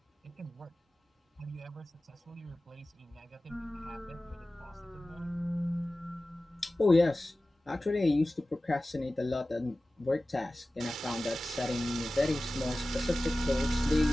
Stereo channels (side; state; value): both; normal; correlation 0.96